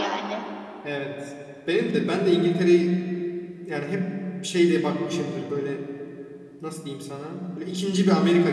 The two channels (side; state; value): both; identical; correlation 1.00